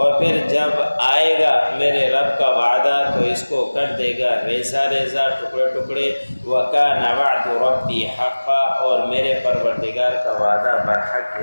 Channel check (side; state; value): both; inverted; correlation -1.00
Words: پھر جب آئے گا میرے رب کا وعدہ تو اس کو کر دے گا ریزہ ریزہ، ٹکڑے ٹکڑے۔ وَكَانَ وَعْدُ رَبِّي حَقًّا، اور میرے پروردگار کا وعدہ برحق